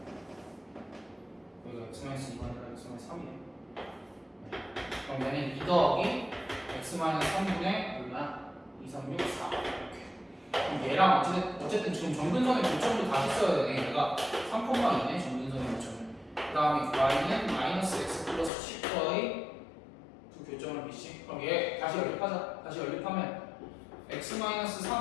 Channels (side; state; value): right; drops out; at 18.5 s